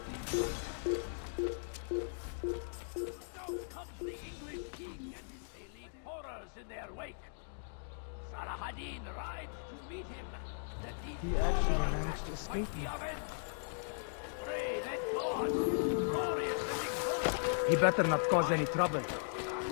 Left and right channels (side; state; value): right; silent; digital silence